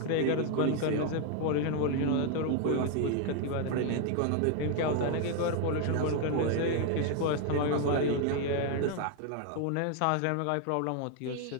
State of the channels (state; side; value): different; both; correlation 0.00